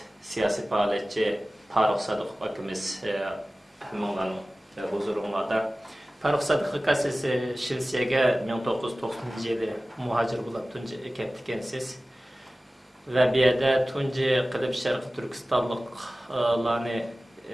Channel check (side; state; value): both; normal; correlation 0.97